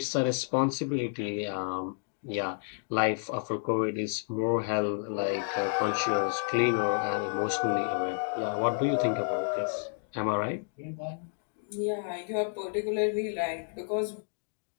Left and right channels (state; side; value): silent; right; digital silence